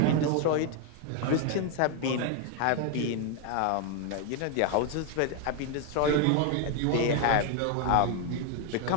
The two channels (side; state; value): both; different; correlation 0.01